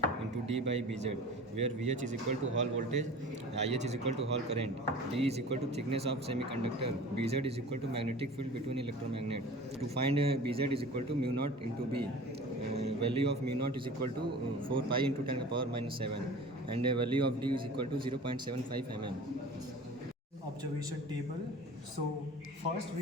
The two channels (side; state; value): both; normal; correlation 0.40